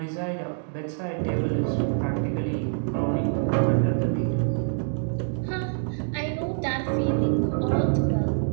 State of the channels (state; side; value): silent; left; digital silence